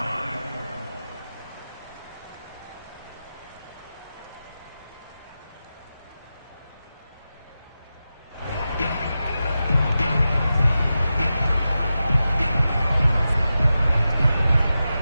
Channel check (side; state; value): both; inverted; correlation -0.92